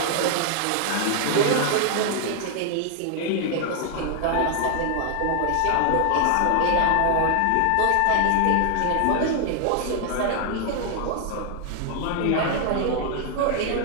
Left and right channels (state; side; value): different; both; correlation 0.00